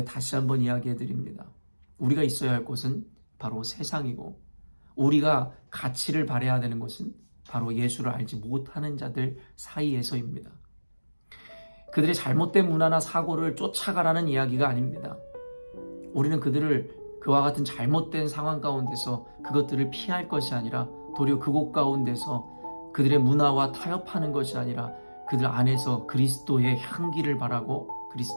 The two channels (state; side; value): inverted; both; correlation -1.00